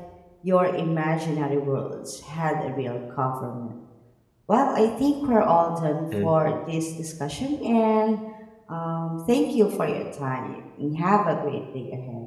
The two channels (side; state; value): both; identical; correlation 1.00